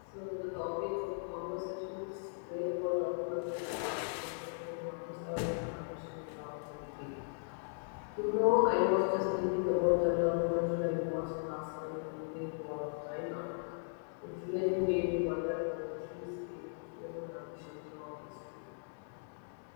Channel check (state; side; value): silent; right; digital silence